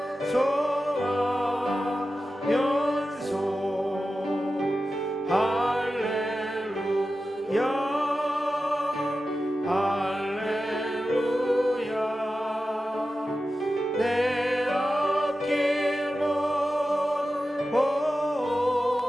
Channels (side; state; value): both; normal; correlation 0.93